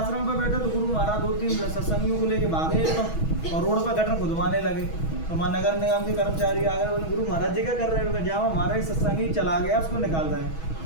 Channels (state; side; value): late; right; 6.2 ms